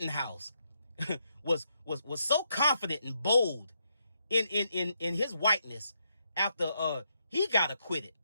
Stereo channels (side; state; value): both; inverted; correlation -0.79